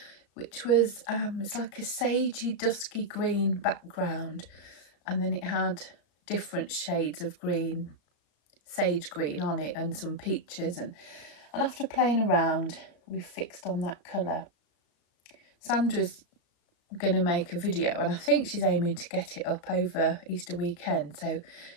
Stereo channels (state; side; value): late; right; 34 ms